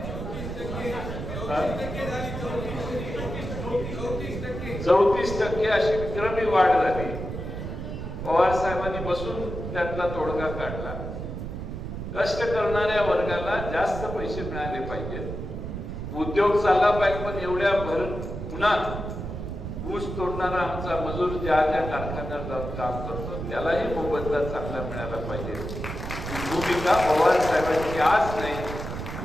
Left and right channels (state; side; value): noise; right; rumble, 6 dB below the sound